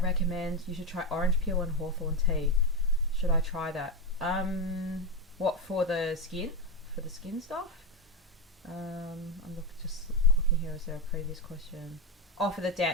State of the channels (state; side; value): normal; both; correlation 0.11